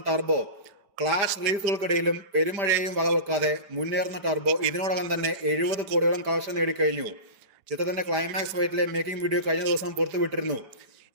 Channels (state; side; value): late; left; 5.0 ms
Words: ടർബോ. ക്ലാഷ് റിലീസുകൾക്കിടയിലും പെരുമഴയെയും വകവെക്കാതെ മുന്നേറുന്ന ടർബോ ഇതിനോടകം തന്നെ 70 കോടിയോളം കളക്ഷൻ നേടിക്കഴിഞ്ഞു. ചിത്രത്തിന്റെ ക്ലൈമാക്സ് ഫൈറ്റിലെ മേക്കിംഗ് വീഡിയോ കഴിഞ്ഞ ദിവസം പുറത്തുവിട്ടിരുന്നു.